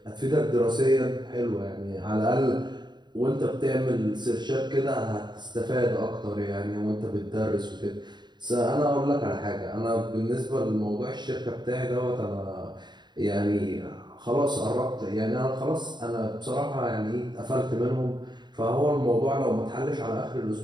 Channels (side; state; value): left; late; 0.21 ms